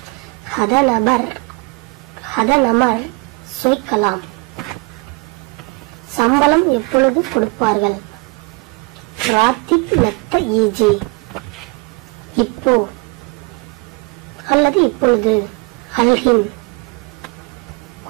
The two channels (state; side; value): quieter; left; 26.8 dB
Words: ஹதநமர் சொய்கலாம், சம்பளம் எப்பொழுது கொடுப்பார்கள்? ராத்திப் மெத்த ஈஜி, இப்போ அல்லது இப்பொழுது. அல்ஹின்,